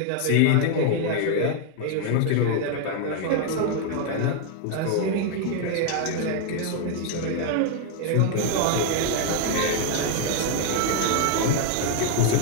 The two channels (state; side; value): different; both; correlation 0.00